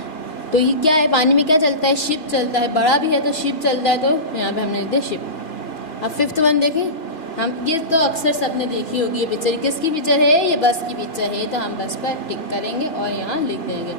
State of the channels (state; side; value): late; right; 3.1 ms